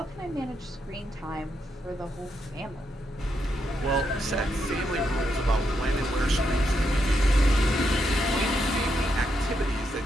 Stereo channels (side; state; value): both; normal; correlation 0.81